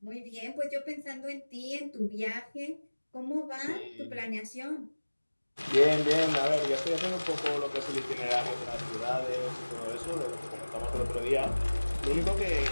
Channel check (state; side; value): inverted; both; correlation -1.00